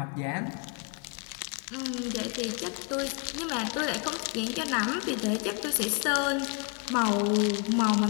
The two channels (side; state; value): right; quieter; 35.6 dB